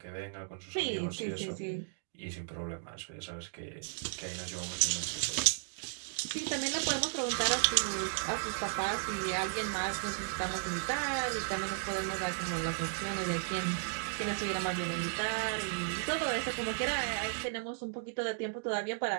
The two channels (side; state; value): left; silent; digital silence